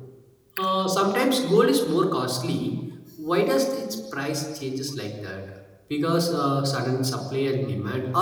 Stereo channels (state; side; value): identical; both; correlation 1.00